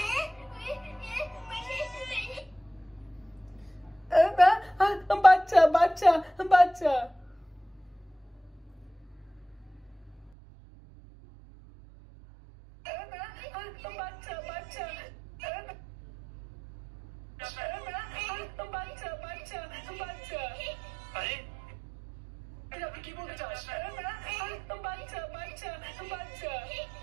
বাচ্চা বাচ্চা বাচ্চা বাচ্চা বাচ্চা বাচ্চা বাচ্চা বাচ্চা আরে আপনি কি বলতে চাস? বাচ্চা বাচ্চা বাচ্চা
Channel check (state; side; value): drops out; left; at 10.3 s